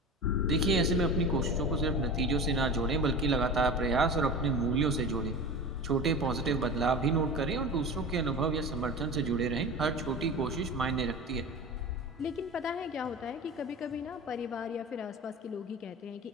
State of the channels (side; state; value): both; normal; correlation 0.31